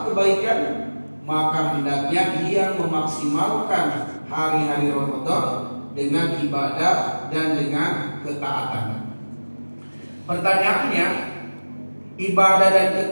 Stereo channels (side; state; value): both; inverted; correlation -1.00